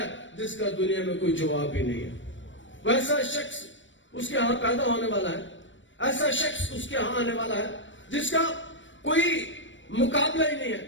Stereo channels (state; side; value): late; right; 0.55 ms